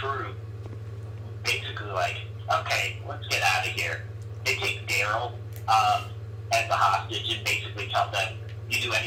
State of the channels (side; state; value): both; identical; correlation 1.00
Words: basically like, okay, let's get out of here. They take Daryl as a hostage and basically tell them, you do